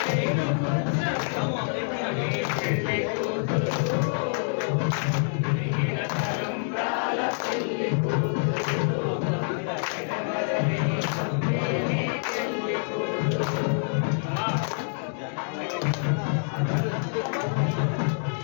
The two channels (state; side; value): silent; right; digital silence